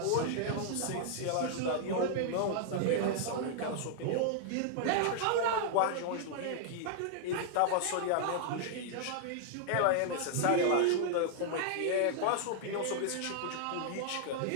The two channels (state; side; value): different; both; correlation -0.01